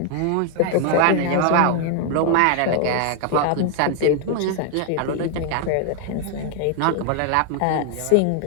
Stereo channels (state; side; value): different; both; correlation 0.00